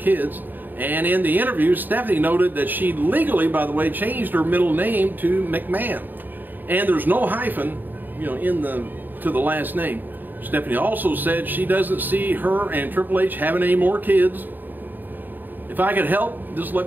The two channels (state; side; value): late; left; 0.090 ms